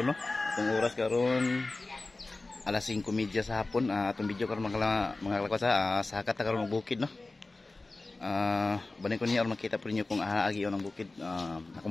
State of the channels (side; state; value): right; quieter; 3.2 dB